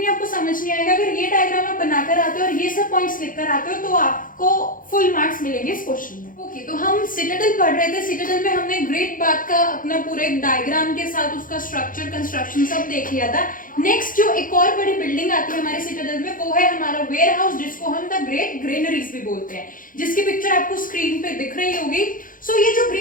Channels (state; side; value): late; right; 0.40 ms